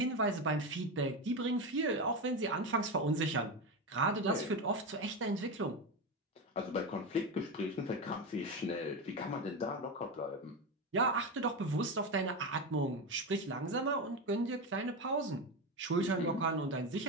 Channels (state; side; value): normal; both; correlation 0.17